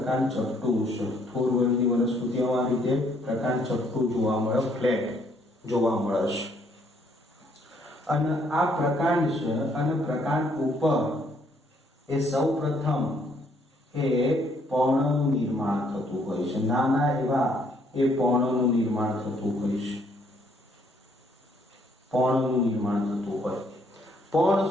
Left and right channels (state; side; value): normal; both; correlation 0.67